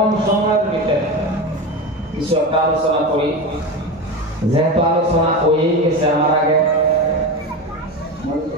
সময়ের ভিতরে কিছু একটা আলোচনা করি। যেহেতু আলোচনা হয়ে গেছে আমার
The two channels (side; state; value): both; normal; correlation 0.22